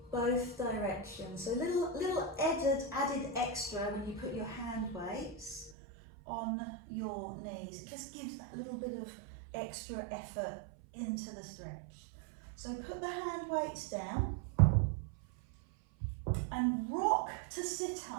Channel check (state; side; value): drops out; left; at 5.7 s